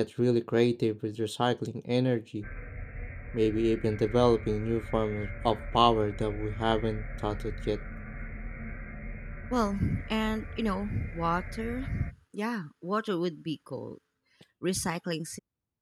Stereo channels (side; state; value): both; identical; correlation 1.00